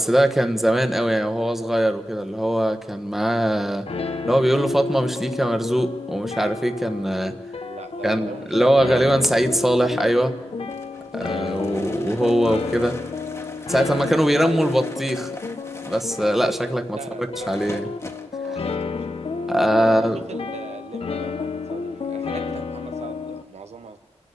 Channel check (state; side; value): normal; both; correlation 0.91